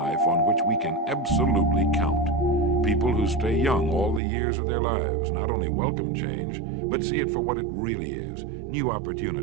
on which we can absolutely count. People who stay young all the years of their lives not only welcome change, but see it for what it really is: new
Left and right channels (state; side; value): drops out; left; at 4.2 s